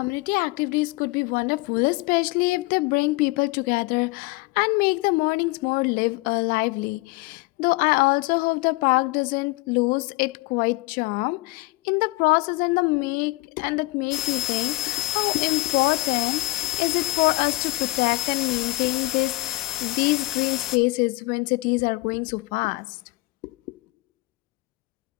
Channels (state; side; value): quieter; right; 22.3 dB